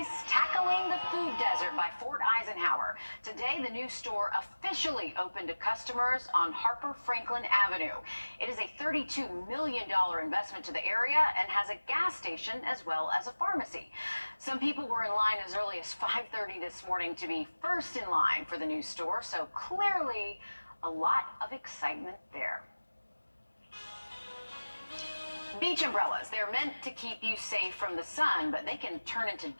tackling the food desert by Fort Eisenhower. Today, the new store officially opened to customers on Harper Franklin Avenue. It is a $32 million investment to the area and has a gas station as well as a pharmacy. Some people were in line as early as 5:30 this morning to be first in line for the new store, so clearly a lot of excitement there. Beach umbrellas, they're meant to keep you safe from the sun, but they can turn into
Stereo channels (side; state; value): both; inverted; correlation -1.00